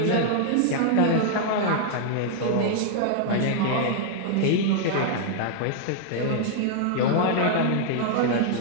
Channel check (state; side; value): different; both; correlation -0.01